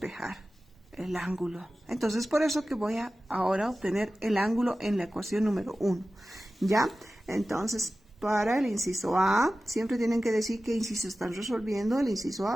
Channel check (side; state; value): both; normal; correlation 0.95